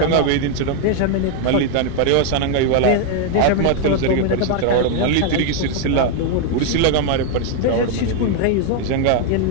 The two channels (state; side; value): different; both; correlation 0.00